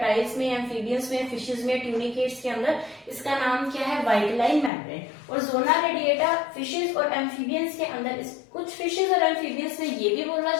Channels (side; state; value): right; drops out; at 4.7 s